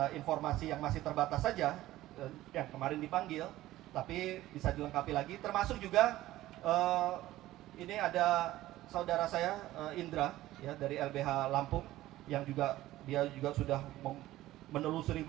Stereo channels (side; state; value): left; quieter; 15.7 dB